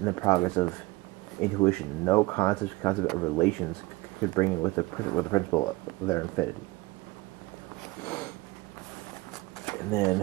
the progress of intuition, no concept of relations could bring in with the principle of their infinity. And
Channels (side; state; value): left; quieter; 21.5 dB